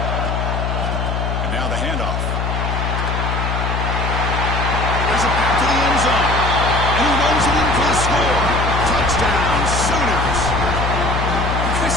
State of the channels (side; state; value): left; noise; hum, 1 dB below the sound